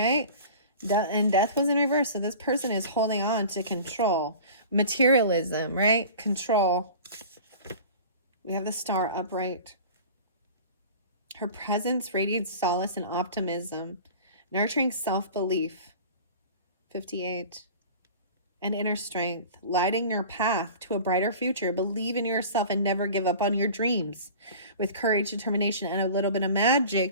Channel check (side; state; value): both; inverted; correlation -0.40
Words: And Death was in reverse. So this person is holding on to control. Materialism, right? Control. We have the Star upright. Her presence radiates solace and optimism, nurturing self-belief. 58. And inner strength, lighting your path to a brighter future. Believe in yourself and never give up on your dreams. With courage, determination, and a little bit of